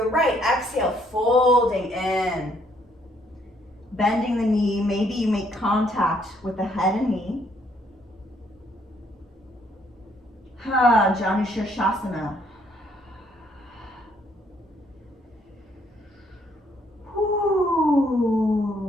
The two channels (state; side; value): normal; both; correlation 0.68